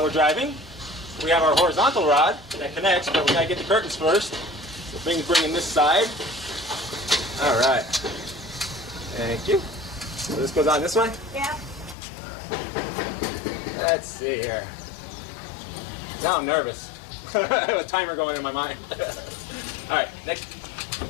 we're driving. We have our horizontal rod that connects, but we gotta get the curtains first. So bring in this side. All right, thank you. So this goes on this way? Yeah. Let's see here. Now I'm nervous. I have a timer going in my mind. All right, next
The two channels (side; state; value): right; drops out; at 12.0 s